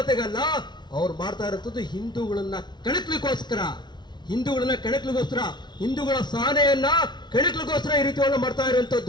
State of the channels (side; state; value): right; late; 0.21 ms